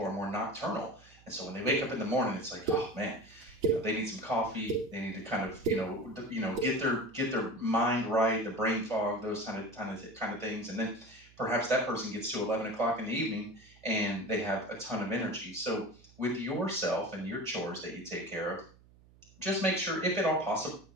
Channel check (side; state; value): right; noise; hum, 26 dB below the sound